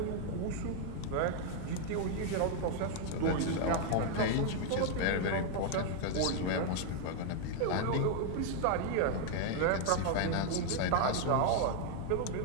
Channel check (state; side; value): different; both; correlation 0.00